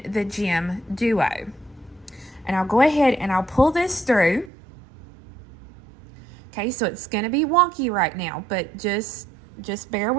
the Gemduo. And I'll go ahead and I'll pull this through. Okay, so it's gonna be wonky right now, but just bear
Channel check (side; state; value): left; drops out; at 4.5 s